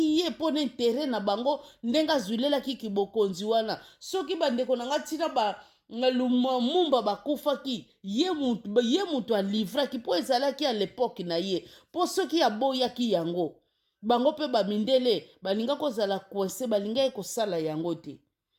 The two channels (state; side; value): identical; both; correlation 1.00